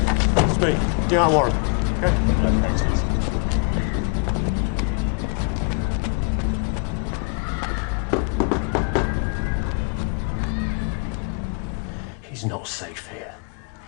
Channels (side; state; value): right; quieter; 36.4 dB